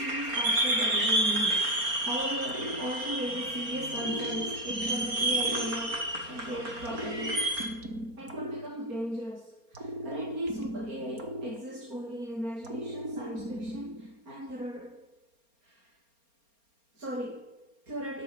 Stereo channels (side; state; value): left; late; 4.3 ms